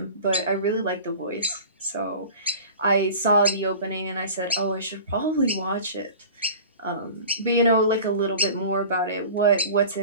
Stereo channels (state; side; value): inverted; both; correlation -0.40